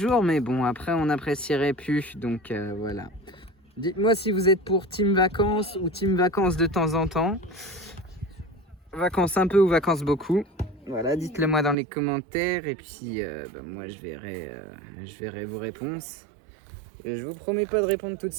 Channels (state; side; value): drops out; left; at 11.8 s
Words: mais bon, après, on n'apprécierait plus. Donc, voilà. Dites-moi si vous êtes pour team vacances ou team vacances de temps en temps. Vacances un peu ou vacances beaucoup. Voilà, dites-le moi dans les commentaires et puis moi je verrai vos réponses. Et je vous promets pas de répondre tout de